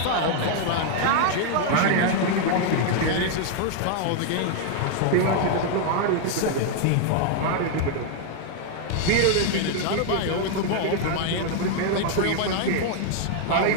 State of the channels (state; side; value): different; both; correlation 0.00